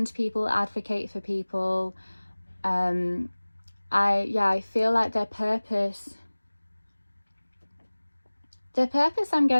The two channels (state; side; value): inverted; both; correlation -1.00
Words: people, advocate for people. I feel like their purpose I'm